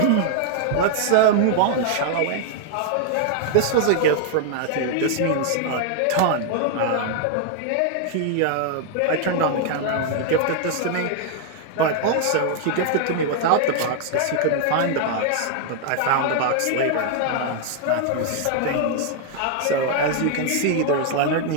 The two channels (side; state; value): both; different; correlation 0.00